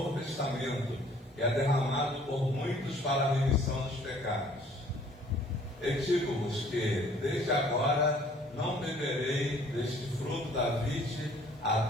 Testamento, que é derramado por muitos para a remissão dos pecados. E digo-vos que, desde agora, não beberei deste fruto da vide,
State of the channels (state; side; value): normal; both; correlation 0.57